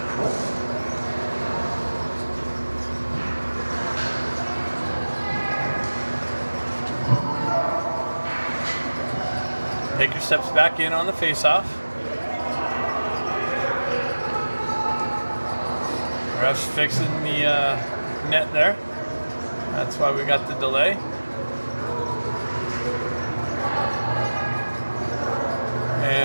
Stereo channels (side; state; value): both; inverted; correlation -1.00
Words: Baker steps back in on the face-off. Ref's fixing the net there. That's why we got the delay.